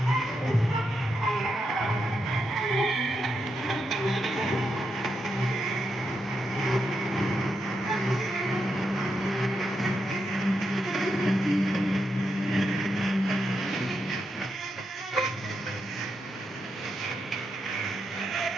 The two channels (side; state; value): both; normal; correlation 0.84